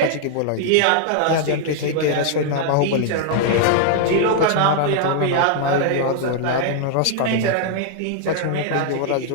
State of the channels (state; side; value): different; both; correlation -0.01